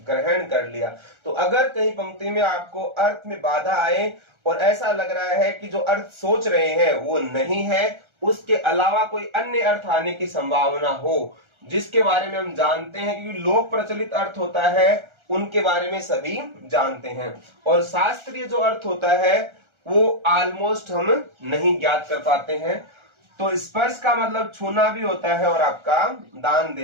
ग्रहण कर लिया। तो अगर कहीं पंक्ति में आपको अर्थ में बाधा आए और ऐसा लग रहा है कि जो अर्थ सोच रहे हैं वो नहीं है, उसके अलावा कोई अन्य अर्थ आने की संभावना हो जिसके बारे में हम जानते हैं, क्योंकि लोक प्रचलित अर्थ होता है उनके बारे में सभी जानते हैं, और शास्त्रीय जो अर्थ होता है वो ऑलमोस्ट हम नहीं ज्ञात कर पाते हैं। तो स्पर्श का मतलब छूना भी होता है और आपका दान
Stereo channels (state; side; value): late; left; 1.4 ms